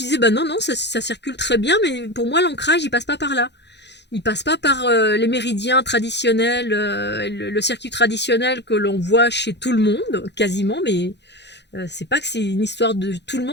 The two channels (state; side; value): late; right; 0.50 ms